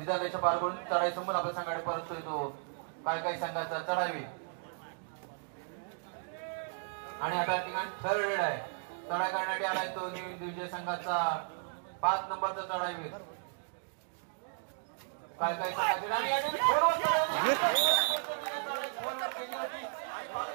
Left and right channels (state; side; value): silent; left; digital silence